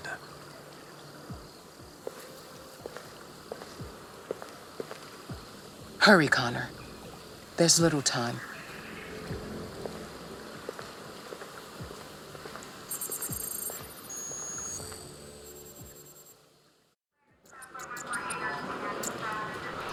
Hurry, Connor. There's little time.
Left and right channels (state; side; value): identical; both; correlation 1.00